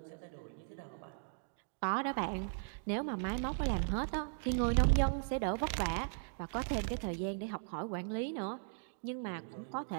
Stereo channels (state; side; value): silent; left; digital silence